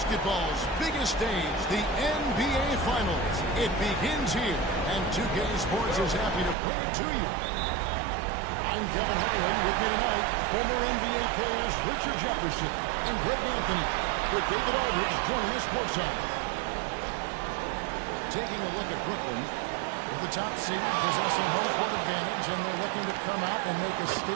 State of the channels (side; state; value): left; drops out; at 6.6 s